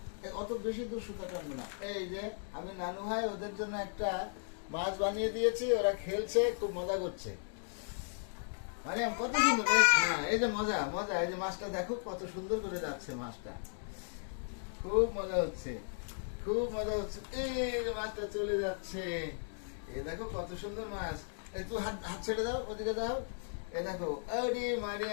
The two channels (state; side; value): silent; right; digital silence